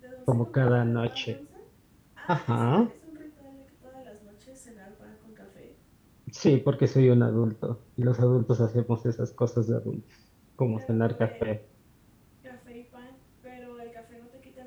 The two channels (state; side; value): identical; both; correlation 1.00